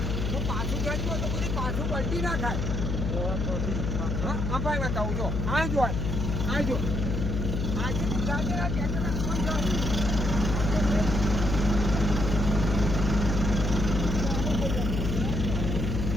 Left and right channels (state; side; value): noise; left; hum, 1 dB below the sound